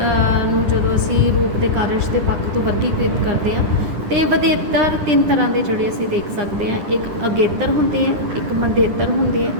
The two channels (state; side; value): late; left; 10 ms